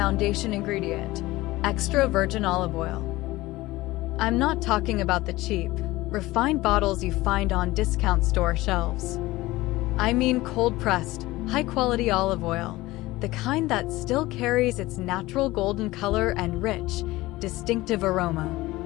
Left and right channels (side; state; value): right; quieter; 18.8 dB